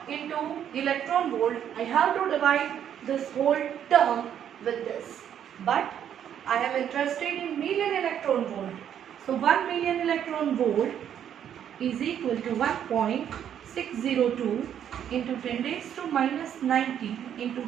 into electron volt, I have to divide this whole term with this. But I am interested in million electron volt. So 1 million electron volt is equal to 1.602 into 10 raised to minus 90 into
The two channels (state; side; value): quieter; left; 9.5 dB